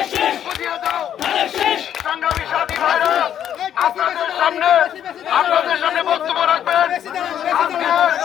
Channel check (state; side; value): quieter; right; 9.9 dB